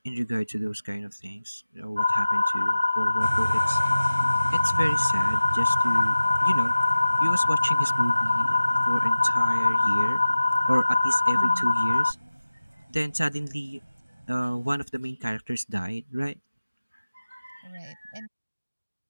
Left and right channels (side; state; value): both; inverted; correlation -0.96